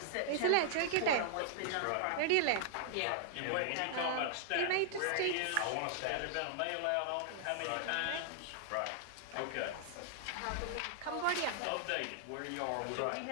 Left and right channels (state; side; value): different; both; correlation -0.01